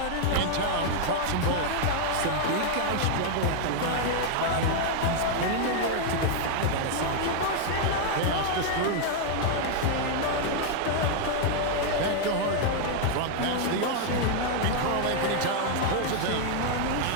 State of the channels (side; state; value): both; different; correlation 0.00